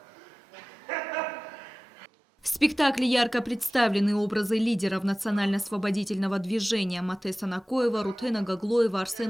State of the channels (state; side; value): normal; both; correlation 0.97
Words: В спектакле ярко представлены образы лидеров национально-освободительного движения Матеса Накоева, Рутена Гаглоева,